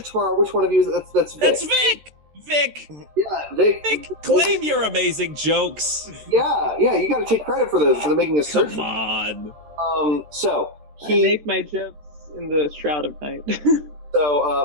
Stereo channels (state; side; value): late; left; 13 ms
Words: Which one of you is that's Vic? That's Vic. Vic. Yeah, Vic. Vic, claim your amazing jokes. Yeah, you got to take credit for those, for the making a search. Come on. So I make my jokes in the Shroud of Night.